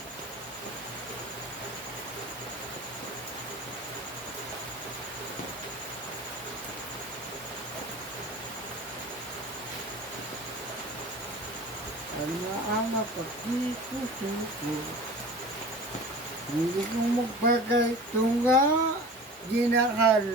Ano ang napagkikusuko? Hindi ko magbagay tunga, ginahal,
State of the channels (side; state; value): both; normal; correlation 0.38